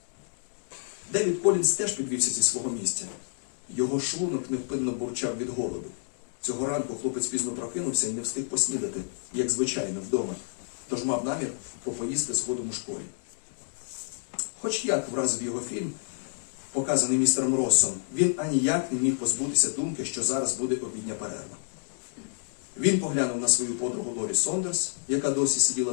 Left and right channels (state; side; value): silent; right; digital silence